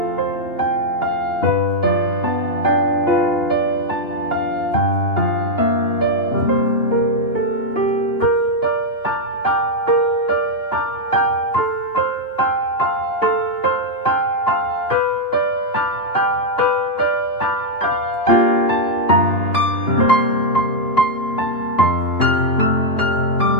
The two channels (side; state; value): right; late; 2.8 ms